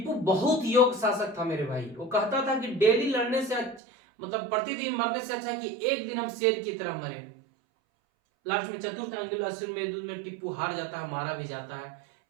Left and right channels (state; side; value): drops out; left; at 3.8 s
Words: बहुत योग्य शासक था मेरे भाई। वो कहता था कि डेली लड़ने से मतलब प्रतिदिन मरने से अच्छा है कि एक दिन हम शेर की तरह मरे। लास्ट में चतुर्थ आंग्ल में टिप्पू हार जाता है, मारा भी जाता है